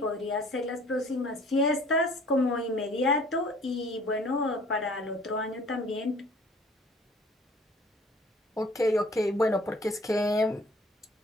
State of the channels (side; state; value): both; normal; correlation 0.53